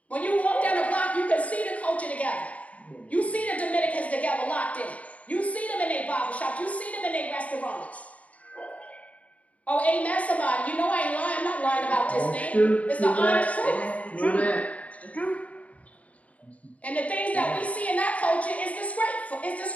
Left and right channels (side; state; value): right; late; 0.068 ms